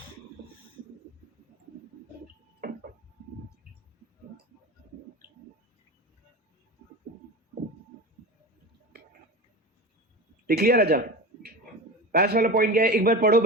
लिख लिया राजा? पास वाला पॉइंट क्या है एक बार पढ़ो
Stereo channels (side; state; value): both; normal; correlation 0.28